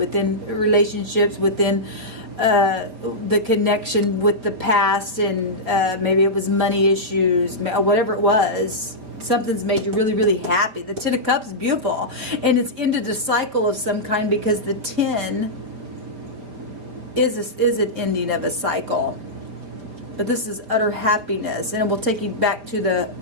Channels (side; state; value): left; late; 4.6 ms